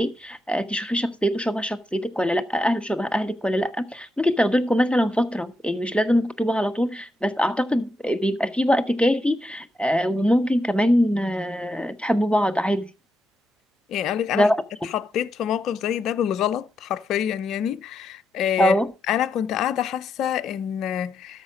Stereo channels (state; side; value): normal; both; correlation 0.84